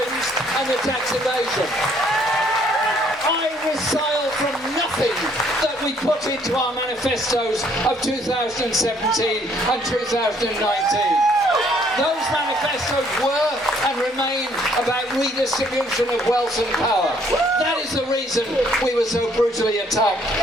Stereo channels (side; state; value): both; normal; correlation 0.64